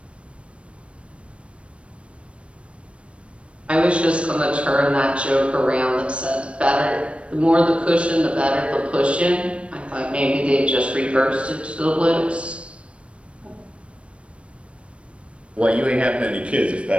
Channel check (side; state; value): left; late; 0.061 ms